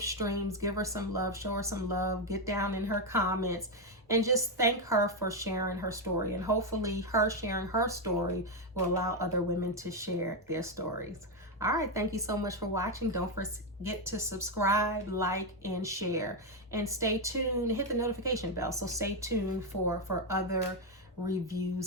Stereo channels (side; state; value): both; normal; correlation 0.05